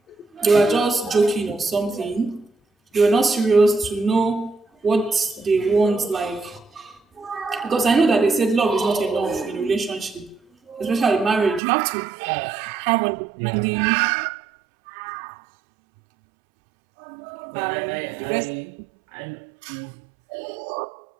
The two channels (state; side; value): drops out; left; at 11.6 s